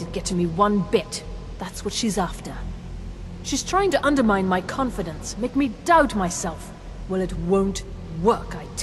it get to me one bit. That's what she's after. She's trying to undermine my confidence, make me doubt myself. Well, it won't work, I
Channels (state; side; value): identical; both; correlation 1.00